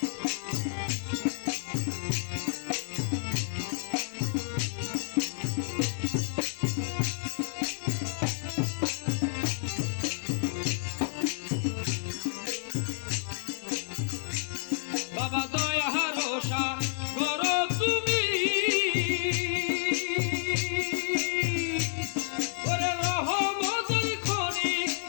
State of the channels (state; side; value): silent; right; 55 dB below the other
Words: বাবা দয়া রোষা করো তুমি ওরে রহমতের খনি